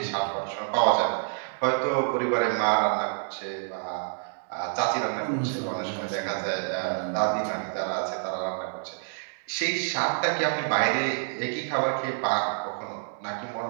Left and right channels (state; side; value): silent; left; digital silence